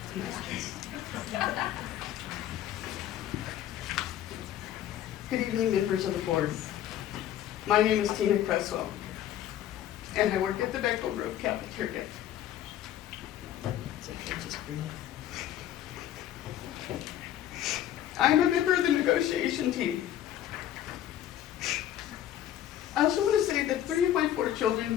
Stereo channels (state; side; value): quieter; right; 11.6 dB